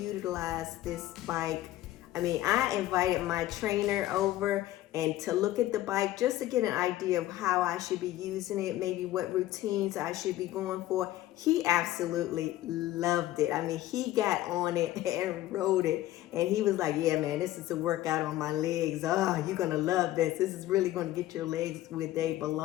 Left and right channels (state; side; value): quieter; right; 15.0 dB